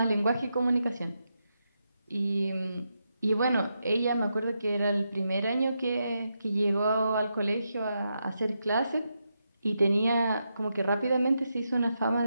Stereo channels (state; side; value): inverted; both; correlation -0.84